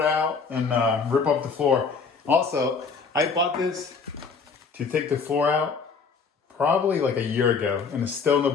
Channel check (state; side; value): quieter; right; 5.2 dB